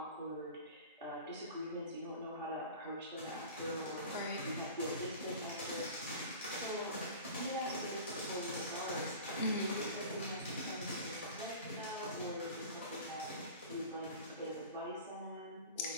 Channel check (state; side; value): inverted; both; correlation -0.37